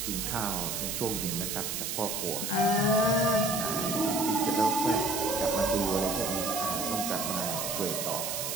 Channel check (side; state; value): right; noise; hiss, 3 dB below the sound